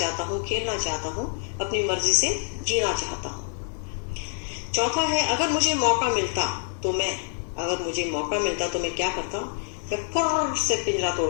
हूँ, खेलना चाहता हूँ, अपनी मर्जी से जीना चाहता हूँ। चौथा है, अगर मुझे मौका मिलता तो मैं क्या करता? मैं फुर्र से पिंजरा तोड़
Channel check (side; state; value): right; silent; 61 dB below the other